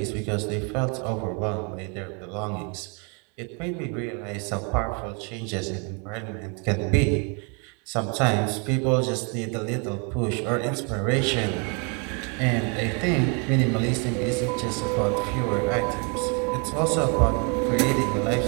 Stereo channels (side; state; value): left; quieter; 35.3 dB